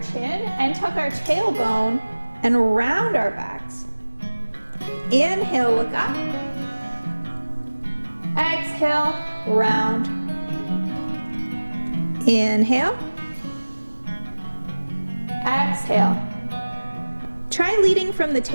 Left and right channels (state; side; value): inverted; both; correlation -1.00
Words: chin and tuck our tailbone and round our backs. Inhale, look up. Exhale, round. Inhale. Exhale. Try leading from the